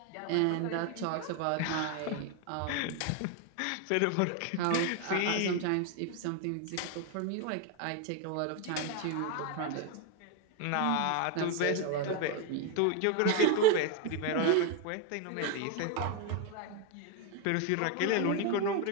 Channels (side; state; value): both; different; correlation 0.02